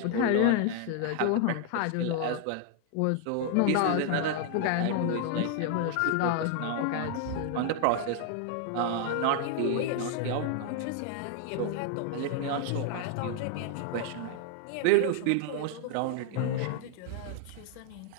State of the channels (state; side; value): different; both; correlation 0.00